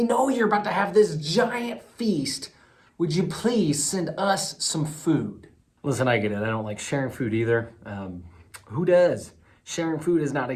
know you're about to have this giant feast. Would you please send us some food? Listen, I get it. I don't like sharing food either. Who does? Sharing food is not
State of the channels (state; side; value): identical; both; correlation 1.00